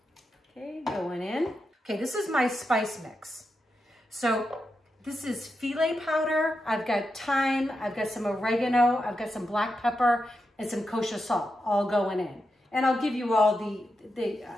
Okay, going in. Okay, this is my spice mix. So this is filet powder. I've got thyme, I've got some oregano, I've got some black pepper, and some kosher salt all going in. And I'll give you all the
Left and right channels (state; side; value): normal; both; correlation 0.87